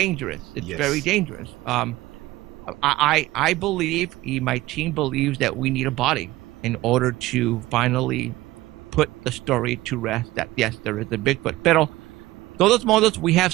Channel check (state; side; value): quieter; left; 17.9 dB